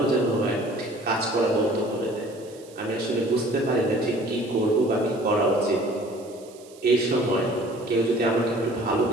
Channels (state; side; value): noise; right; hiss, 24 dB below the sound